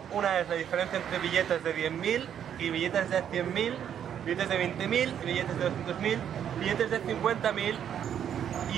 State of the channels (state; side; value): quieter; left; 9.2 dB